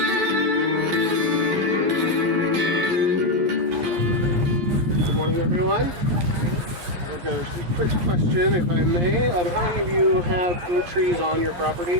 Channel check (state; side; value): late; left; 11 ms